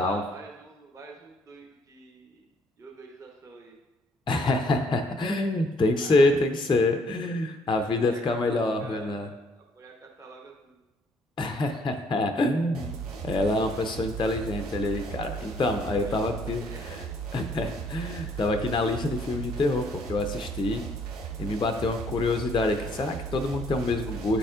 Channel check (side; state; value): both; normal; correlation 0.64